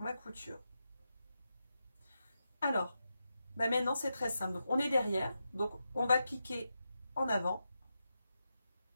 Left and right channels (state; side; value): inverted; both; correlation -0.88